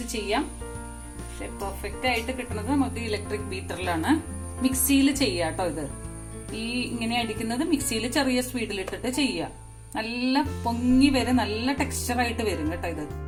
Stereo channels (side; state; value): both; identical; correlation 1.00